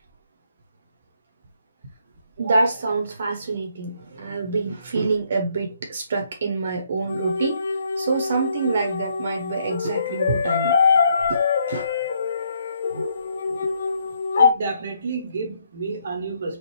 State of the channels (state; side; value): inverted; both; correlation -0.72